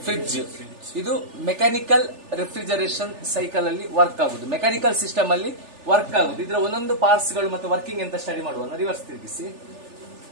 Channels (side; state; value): left; late; 3.4 ms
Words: fridge. ಇದು mechanical refrigeration cycle ಅಲ್ಲಿ ವರ್ಕ್ ಆಗುದು, ಮೆಕ್ಯಾನಿಕಲ್ ಸಿಸ್ಟಮ್ ಅಲ್ಲಿ ವರ್ಕ್ ಆಗುದು. ಇದರ ಒಂದೊಂದು ಪಾರ್ಟ್ಸ್ ಗಳು ಮತ್ತು ವರ್ಕಿಂಗ್ ಅಂತ ಸ್ಟಡಿ ಮಾಡುವ. ರಿವರ್ಸ್ ತಿರುಗಿಸಿ